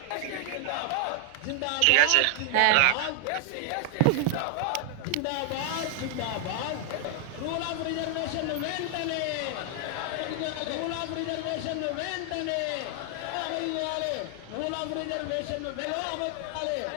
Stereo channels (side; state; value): both; different; correlation 0.00